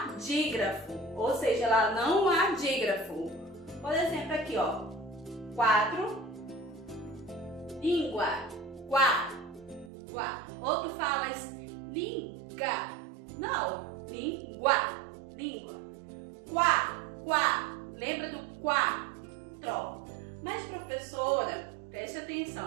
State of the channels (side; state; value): left; drops out; at 9.9 s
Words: dígrafo. Ou seja, lá não há dígrafo. Por exemplo, aqui, ó. 4. Língua. Quá. Quá. Ou tu falas linga. Não. Língua. Língua. Quá. Quá. Lembra do quatro. Mas, professora, preste